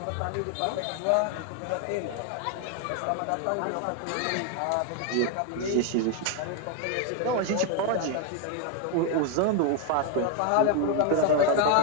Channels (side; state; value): both; different; correlation 0.01